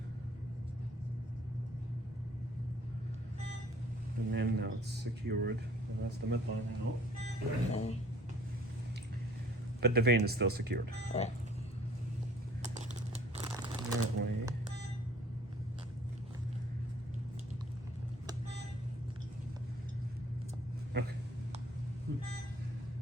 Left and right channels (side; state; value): both; normal; correlation 0.55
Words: And then now it's secured. And that's the midline out. But the vein is still secured. That way. Okay.